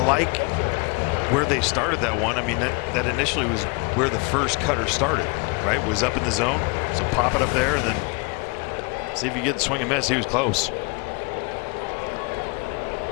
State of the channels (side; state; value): right; quieter; 31.0 dB